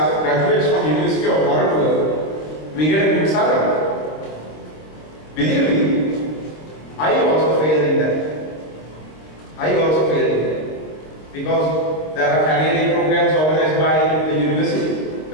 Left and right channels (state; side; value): late; right; 26 ms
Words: graduates from University of Waterloo, we get a good salary. Believe me, I also failed in that. Because there are career programs organized by the university.